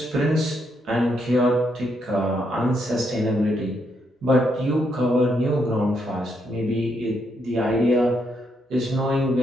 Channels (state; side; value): normal; both; correlation 0.77